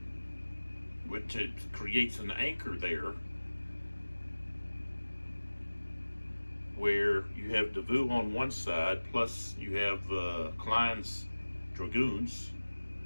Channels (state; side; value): inverted; both; correlation -1.00